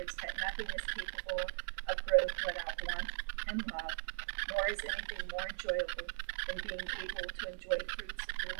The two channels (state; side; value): silent; left; 52 dB below the other